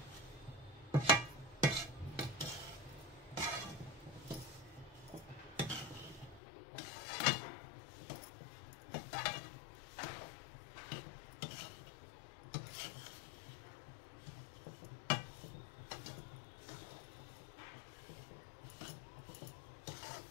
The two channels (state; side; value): drops out; right; at 6.4 s